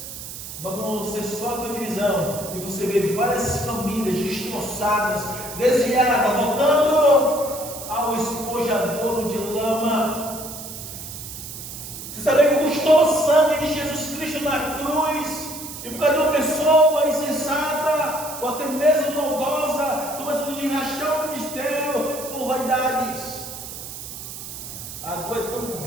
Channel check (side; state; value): right; noise; hiss, 10 dB below the sound